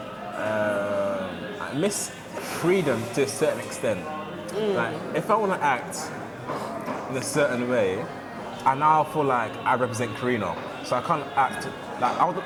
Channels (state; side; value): identical; both; correlation 1.00